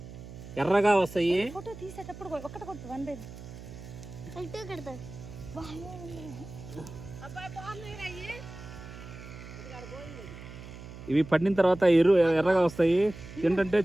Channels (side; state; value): right; noise; hum, 14 dB below the sound